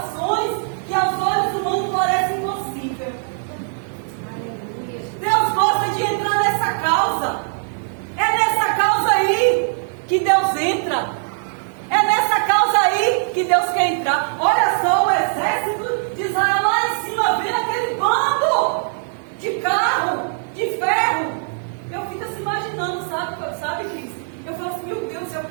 que aos olhos humanos parecem impossíveis. Deus gosta de entrar nessa causa. É nessa causa aí que Deus entra. É nessa causa aí que Deus quer entrar. Olha só o exército de Israel lá em cima, vendo aquele bando de carro, de ferro. Eu fico assim imaginando, sabe, Cris? Eu falo assim, meu Deus, eu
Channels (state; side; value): silent; left; digital silence